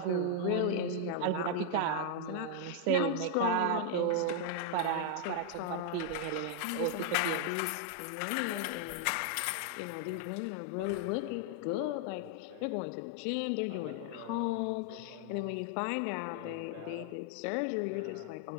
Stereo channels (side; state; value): both; different; correlation 0.00